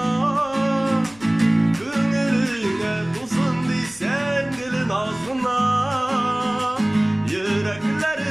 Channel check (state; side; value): noise; left; rumble, 26 dB below the sound